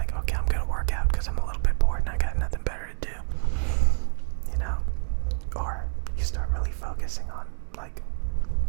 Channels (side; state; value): left; silent; 60 dB below the other